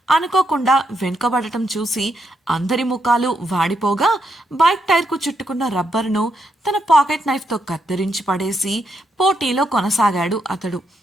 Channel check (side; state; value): both; normal; correlation 0.79